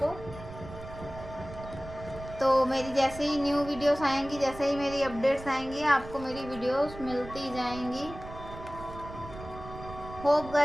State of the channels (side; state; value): right; noise; rumble, 13 dB below the sound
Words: को। तो मेरी जैसे ही न्यू वीडियोस आएंगी, जैसे ही मेरी अपडेट्स आएंगी, आपको मेरी वीडियोस मिलती जाएंगी। Hope